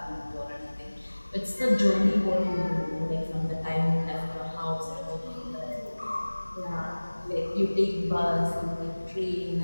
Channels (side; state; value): both; inverted; correlation -1.00